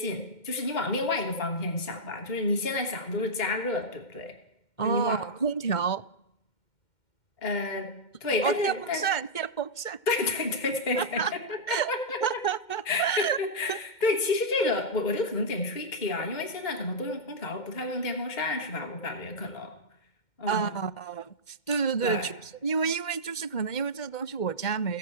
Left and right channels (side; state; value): right; late; 2.1 ms